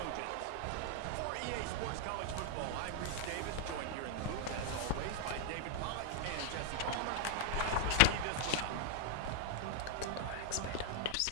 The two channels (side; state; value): both; different; correlation 0.00